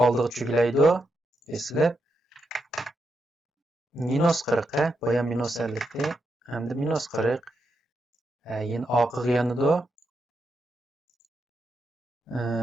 oldiga cho'glaydi. Eslab minus 40 boya minus 50 hamda minus 40 yana oqiga yanadi.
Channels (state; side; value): normal; both; correlation 0.83